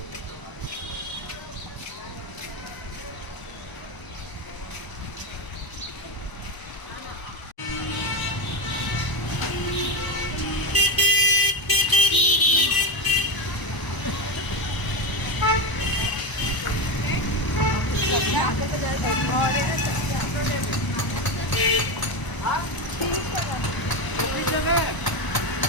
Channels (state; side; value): late; right; 1.0 ms